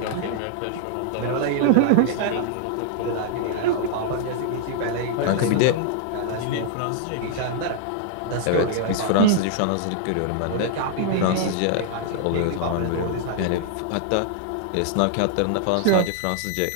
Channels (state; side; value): different; both; correlation -0.01